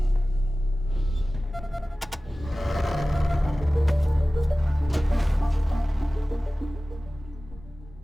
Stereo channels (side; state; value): both; normal; correlation 0.97